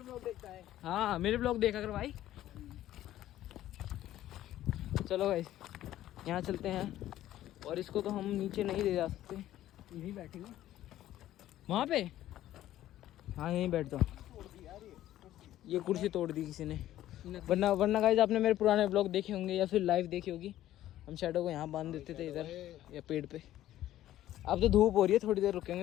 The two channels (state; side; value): quieter; right; 13.5 dB